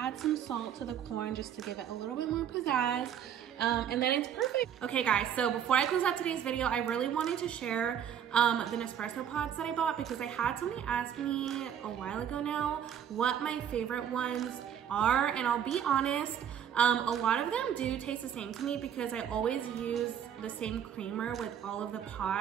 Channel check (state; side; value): quieter; left; 9.1 dB